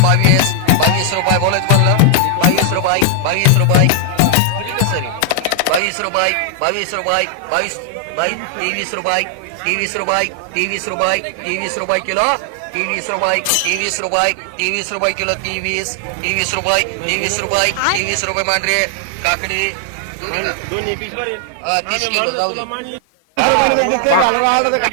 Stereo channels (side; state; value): both; different; correlation 0.00